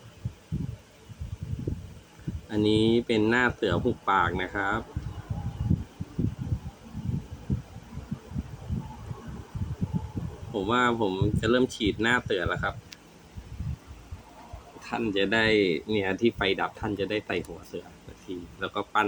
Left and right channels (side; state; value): both; identical; correlation 1.00